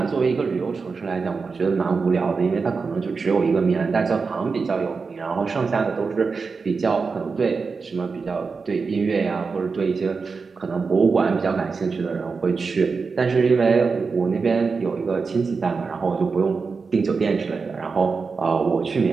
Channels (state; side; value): quieter; left; 4.8 dB